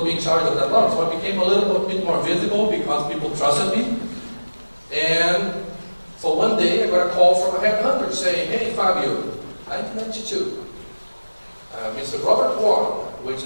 me in charge of that launch. So I became a little bit more visible because people trusted me. And so one day I got a call from a headhunter saying, hey Fabio, 1992, Mr. Robert Warren, which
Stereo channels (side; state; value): both; inverted; correlation -1.00